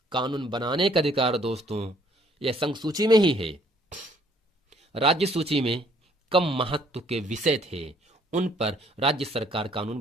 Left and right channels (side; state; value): both; normal; correlation 0.62